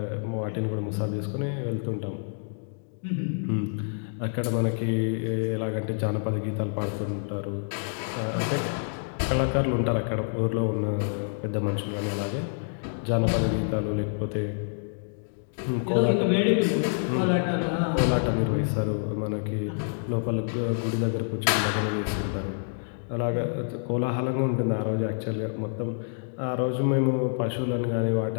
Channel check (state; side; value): silent; right; digital silence